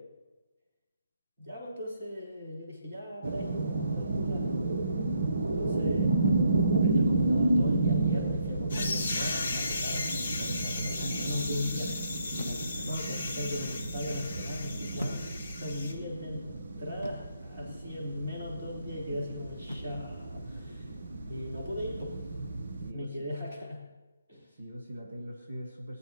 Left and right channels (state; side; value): inverted; both; correlation -0.74